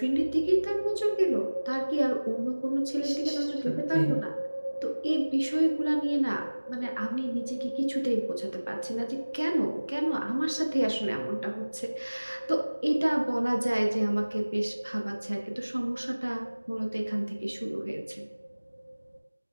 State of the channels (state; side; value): inverted; both; correlation -1.00